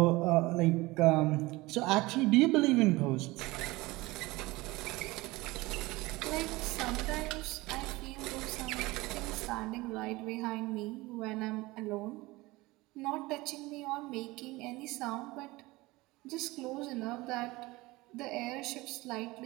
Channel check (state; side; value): quieter; left; 21.1 dB